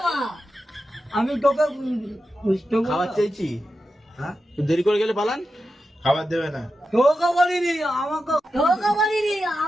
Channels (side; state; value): both; normal; correlation 0.90